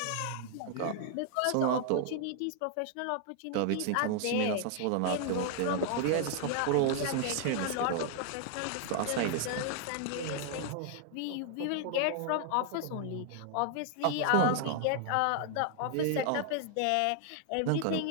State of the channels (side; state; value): both; different; correlation 0.00